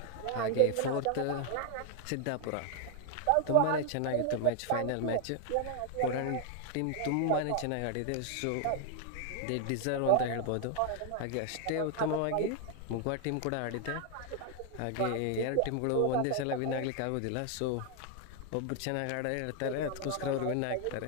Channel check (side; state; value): both; different; correlation 0.00